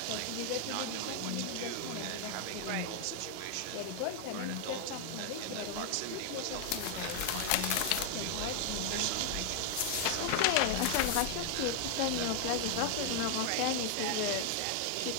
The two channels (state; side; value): different; both; correlation 0.00